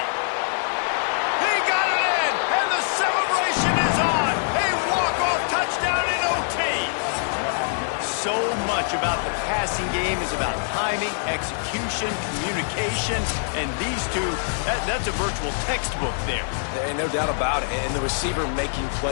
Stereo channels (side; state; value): right; silent; digital silence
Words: He got it in, and the celebration is on. A walk-off touchdown in OT. So much about the passing game is about timing, execution, communication, and these two, that's a virtual textbook there. And no doubt about it. And the receiver making